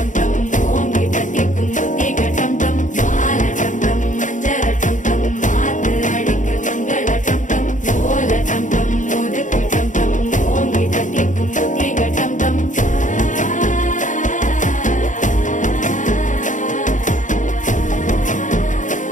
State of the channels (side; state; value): right; late; 0.37 ms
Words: டம் ஓங்கி தட்டிக்கும் புத்திக டம் டம் மாலை டம் டம் மஞ்சள டம் டம் மாத்து அடிக்க மங்கள டம் டம் ஓல டம் டம் ஒதுக்கு டம் டம் ஓங்கி தட்டிக்கும் புத்திக டம் டம்